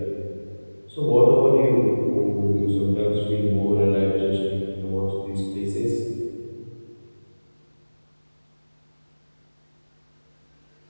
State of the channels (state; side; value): inverted; both; correlation -1.00